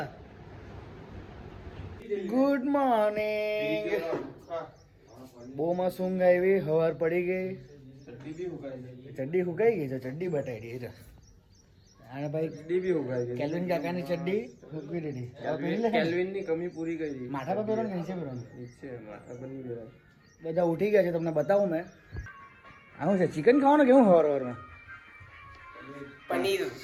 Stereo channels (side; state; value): both; identical; correlation 1.00